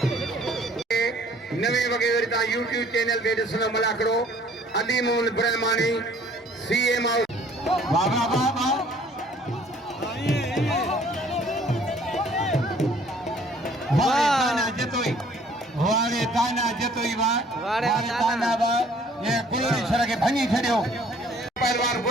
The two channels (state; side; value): normal; both; correlation 0.57